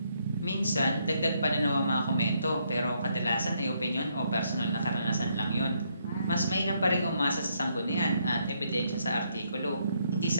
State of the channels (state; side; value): inverted; both; correlation -0.74